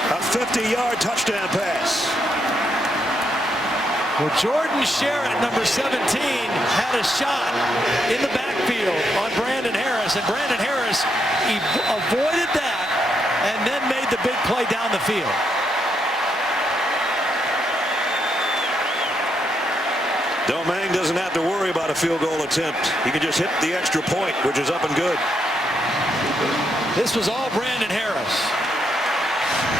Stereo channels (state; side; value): normal; both; correlation 0.78